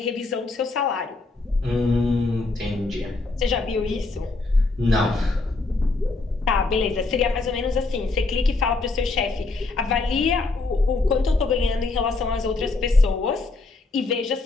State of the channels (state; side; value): quieter; right; 3.5 dB